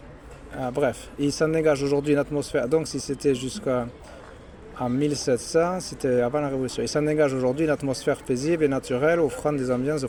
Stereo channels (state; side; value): identical; both; correlation 1.00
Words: Bref, il s'en dégage aujourd'hui une atmosphère, donc si c'était jusqu'à 1700, c'était avant la Révolution. Il s'en dégage aujourd'hui une atmosphère paisible et naturelle, offrant des ambiances